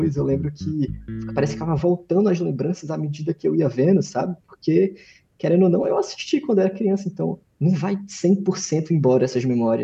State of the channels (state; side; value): identical; both; correlation 1.00